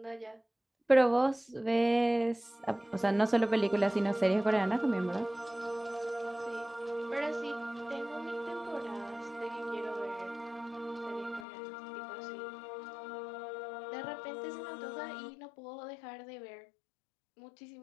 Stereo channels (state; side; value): drops out; right; at 11.5 s